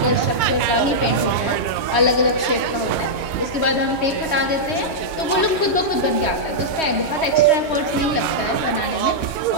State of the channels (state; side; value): late; right; 2.2 ms